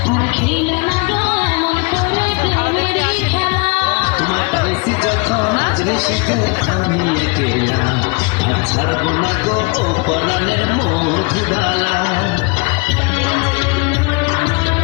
আর খেলো না গো এমন করে প্রেমেরই খেলা। তোমার পাইছি যখন আজ নিষেধ আমি একেলা, আর ছাড়বো না গো ও পরাণের মধুডালা।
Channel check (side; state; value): right; quieter; 29.1 dB